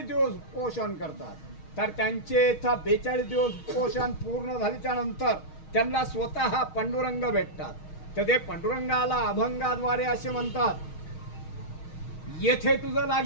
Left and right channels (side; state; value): right; late; 6.4 ms